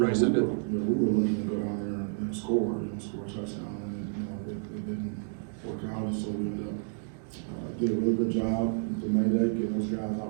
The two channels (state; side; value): silent; left; digital silence